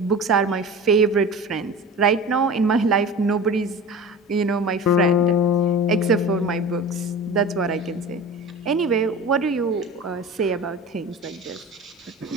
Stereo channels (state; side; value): normal; both; correlation 0.35